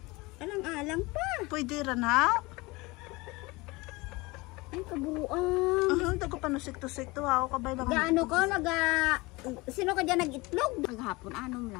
Alang-alang pa. Pwede rin ha? Ay, kabuuan. Dago pa nusik-tusik to ha. Kabay lang. Gaano ko, sino ka dyan nag-itlog? Naghapon, anom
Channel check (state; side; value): quieter; right; 23.4 dB